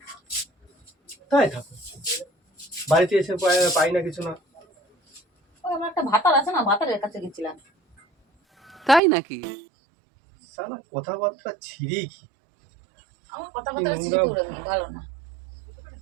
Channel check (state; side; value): drops out; left; at 9.0 s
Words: তাই থাকো, বাড়িতে এসে পাই না কিছু না। আমার একটা ভাতার আছে না, ভাতারের কাছে গেছিলাম। তাই নাকি? শালা কথাবার্তা ছিঁড়ি কি? আমার কথাবার্তা ভালো না।